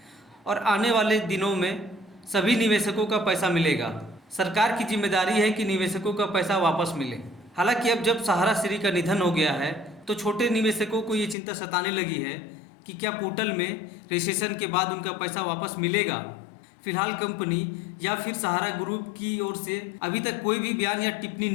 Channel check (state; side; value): drops out; right; at 11.4 s